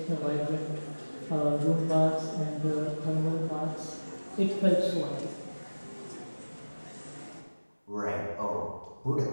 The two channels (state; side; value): inverted; both; correlation -1.00